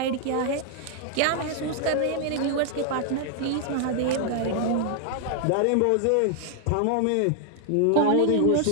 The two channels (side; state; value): both; different; correlation 0.00